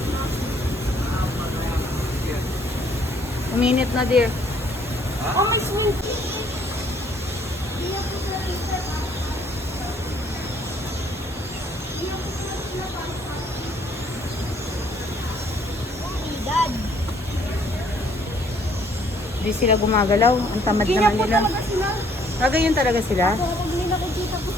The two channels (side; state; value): both; normal; correlation 0.63